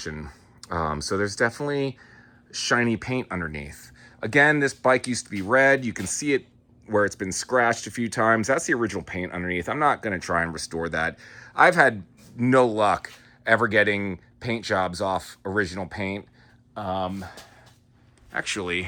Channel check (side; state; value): both; identical; correlation 1.00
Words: So there's definitely shiny paint underneath. Again, this bike used to be red. You can see it where it's been scratched a few times. That's the original paint underneath. I'm not going to try and restore that. I've had no luck ever getting paint jobs off original paint.